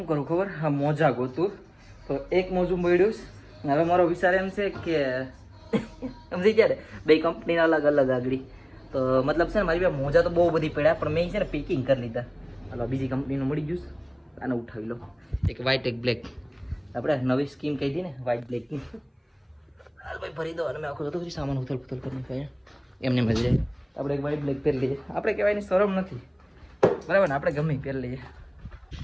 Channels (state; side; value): identical; both; correlation 1.00